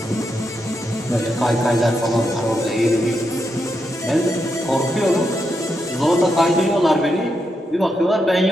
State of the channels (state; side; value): normal; both; correlation 0.83